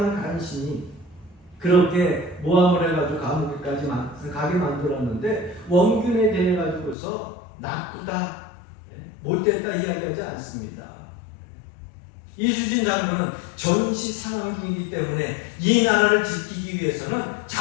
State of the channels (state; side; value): drops out; right; at 7.0 s